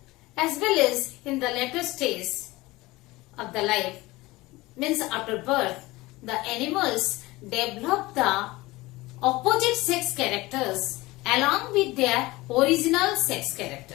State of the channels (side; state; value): right; quieter; 20.4 dB